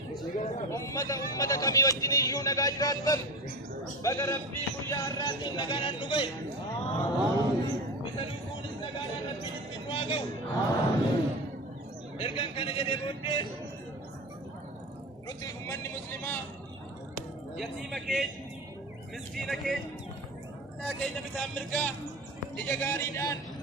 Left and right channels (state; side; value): normal; both; correlation 0.28